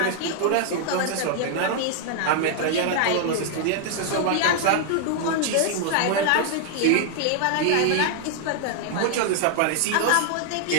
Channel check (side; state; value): both; different; correlation 0.00